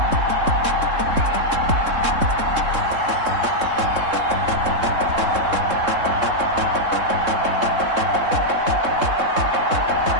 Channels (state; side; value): late; left; 3.7 ms